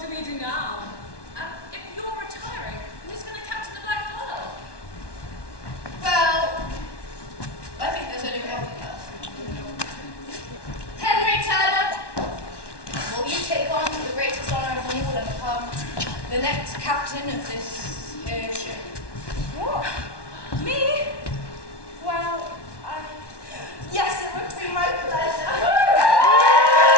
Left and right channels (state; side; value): late; right; 1.1 ms